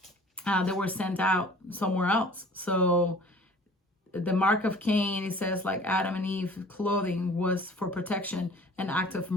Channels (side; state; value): both; normal; correlation 0.48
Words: they were sent out somewhere else. So the mark of Cain, it says, like Adam and Eve, clothing was for protection, an act of